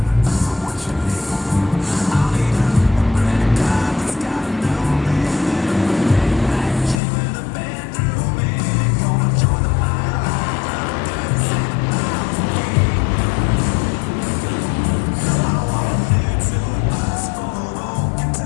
So what you need? I'll need a credit card that's got no limit, and a big black gym with a bedroom in it. Gonna join the wildlife club, doing 7,000 feet. I want a new tour bus full of old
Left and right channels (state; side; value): drops out; right; at 7.0 s